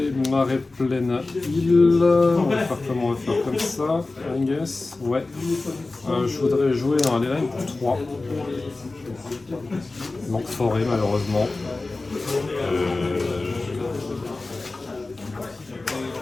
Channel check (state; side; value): quieter; right; 3.3 dB